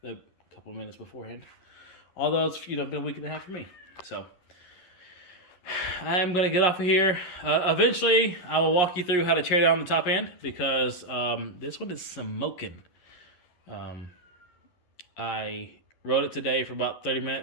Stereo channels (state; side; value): late; right; 11 ms